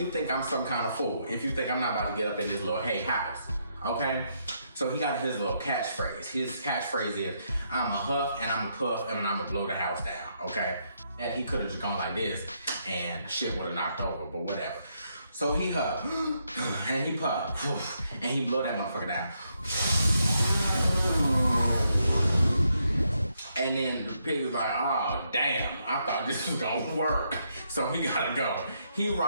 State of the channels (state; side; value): inverted; both; correlation -0.77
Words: think I'm some kind of fool if you think I'm not about to get up in this little hay house, okay? So he got his little catchphrase. His catchphrase is, I'm a huff and I'm a puff and I'm gonna blow the house down, okay? And he could have just gone like this and shit would have knocked over, but whatever. So he huff and he puff and he blow that motherfucker down. And then the pig was like, oh damn, I thought this was gonna work. So he gotta go. He